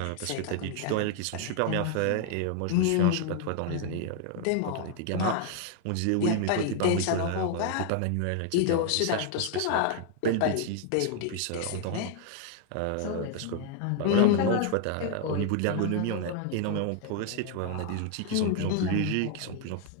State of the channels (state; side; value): different; both; correlation 0.00